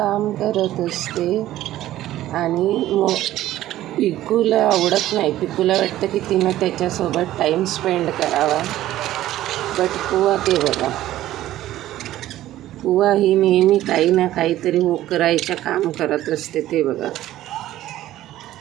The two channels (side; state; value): left; quieter; 14.1 dB